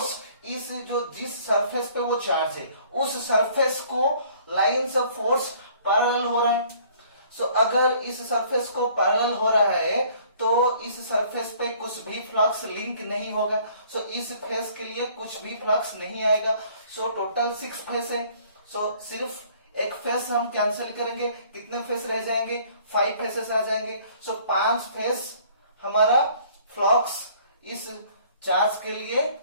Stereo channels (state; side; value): inverted; both; correlation -0.56